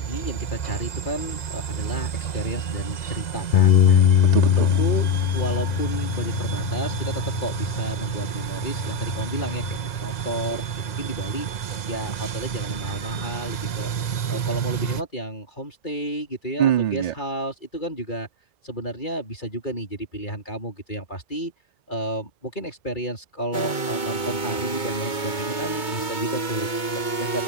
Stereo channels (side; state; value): right; late; 2.2 ms